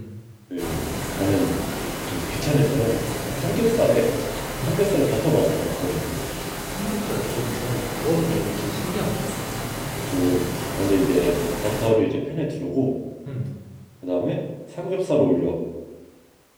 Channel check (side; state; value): both; identical; correlation 1.00